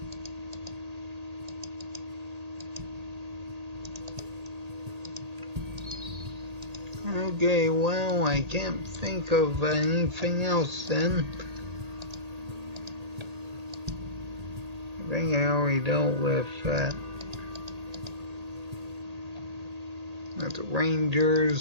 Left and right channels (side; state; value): left; late; 1.8 ms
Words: Okay, well, I can't think of anything else then. I think I already dealt with the